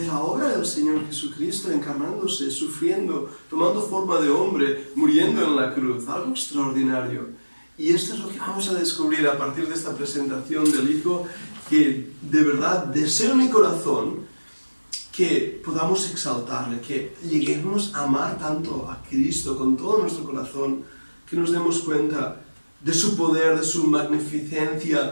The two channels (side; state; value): both; inverted; correlation -1.00